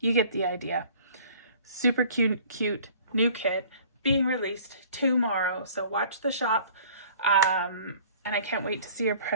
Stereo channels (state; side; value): inverted; both; correlation -0.51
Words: get the idea. Super cute new kit being released tomorrow. So watch the shop. And I can't wait to see your